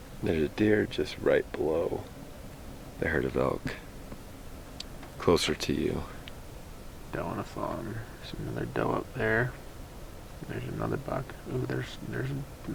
There's a deer just right below the herd of elk, closer to you. Doe on a fawn. There's another doe up there. There's another buck. Ooh,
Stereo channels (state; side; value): identical; both; correlation 1.00